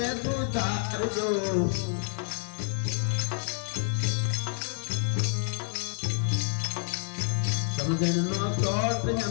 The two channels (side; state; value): right; silent; 59 dB below the other